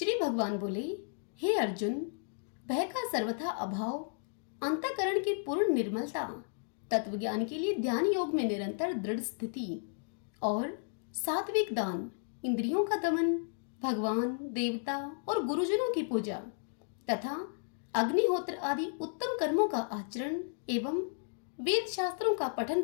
भगवान बोले, हे अर्जुन, भय का सर्वथा अभाव, अंतःकरण की पूर्ण निर्मलता, तत्वज्ञान के लिए ध्यान योग में निरंतर दृढ़ स्थिति और सात्विक दान, इंद्रियों का दमन, भगवान, देवता और गुरुजनों की पूजा तथा अग्निहोत्र आदि उत्तम कर्मों का आचरण एवं वेद शास्त्रों का पठन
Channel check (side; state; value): right; silent; digital silence